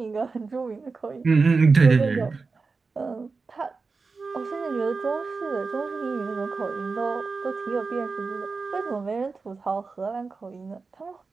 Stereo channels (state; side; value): quieter; left; 4.3 dB